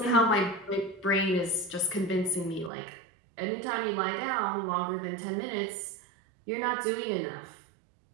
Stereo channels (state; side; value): drops out; left; at 2.7 s